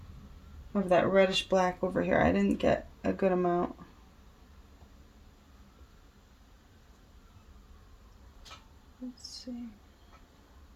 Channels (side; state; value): both; identical; correlation 1.00